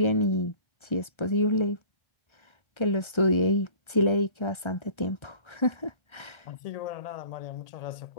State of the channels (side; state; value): right; late; 1.3 ms